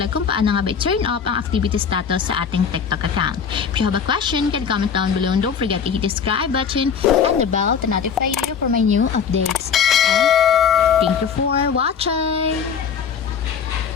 kung paano nga ba turn off ang activity status sa ating TikTok account. If you have a question, can comment down below and don't forget to hit the subscribe button and the bell to notify you for my new updates. And thank you for watching!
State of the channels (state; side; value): quieter; right; 6.9 dB